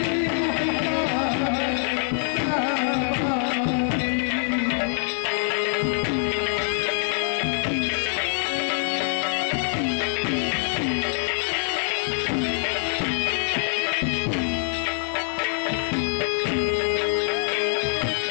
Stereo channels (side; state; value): right; silent; 62 dB below the other